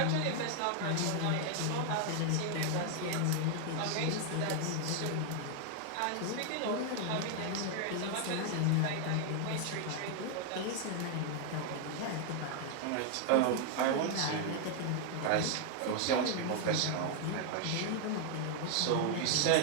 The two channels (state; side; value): different; both; correlation 0.00